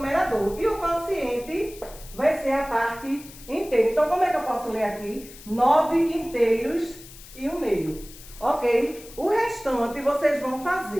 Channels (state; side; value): noise; left; hiss, 18 dB below the sound